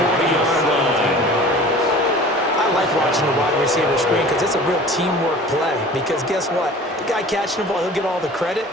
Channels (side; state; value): both; normal; correlation 0.43